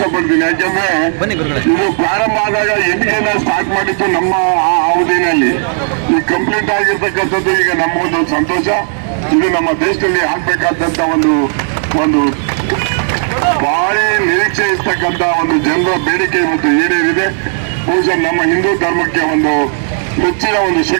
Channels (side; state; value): left; silent; digital silence